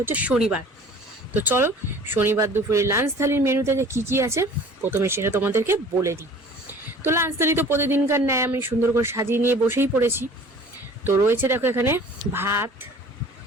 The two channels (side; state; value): both; normal; correlation 0.47